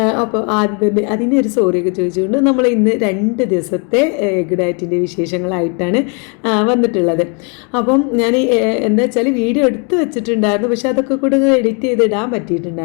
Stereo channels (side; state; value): right; quieter; 36.4 dB